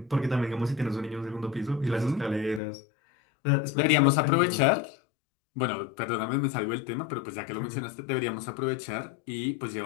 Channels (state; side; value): drops out; right; at 2.6 s